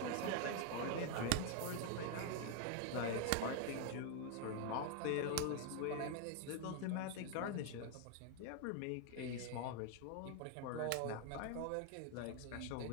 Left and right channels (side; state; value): both; different; correlation 0.01